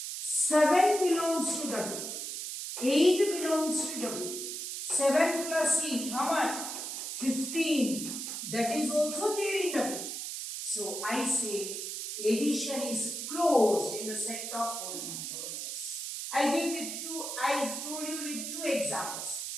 7 belongs to W. 8 belongs to W. 7 plus 8, how much? 15. That is also there in W. So I say addition is closed in the set of whole numbers. I told you with 2 examples.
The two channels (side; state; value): right; noise; hiss, 5 dB below the sound